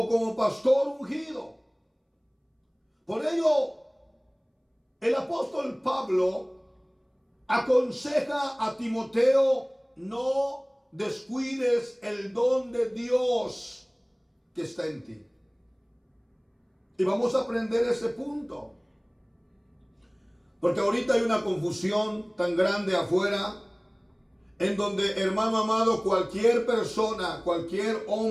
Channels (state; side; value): identical; both; correlation 1.00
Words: como pastor ungido. Por ello, el apóstol Pablo aconseja a Timoteo: no descuides el don de Dios que está en ti. Y vamos a aprender ese punto. Porque ahorita hay una confusión tan grande afuera, en donde, hermano amado, cualquier persona, cualquier